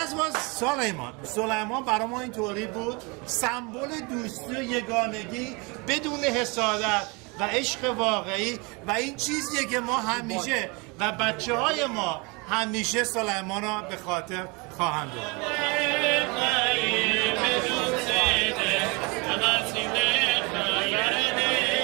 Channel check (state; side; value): quieter; left; 28.9 dB